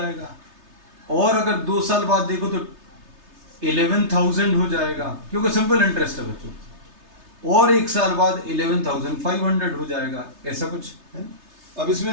और अगर 2 साल बाद देखो तो 11,000 हो जाएगा, क्योंकि सिंपल इंटरेस्ट है बच्चों, और 1 साल बाद 11,500 हो जाएगा, ऐसा कुछ है। अब इसमें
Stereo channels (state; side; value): late; left; 3.3 ms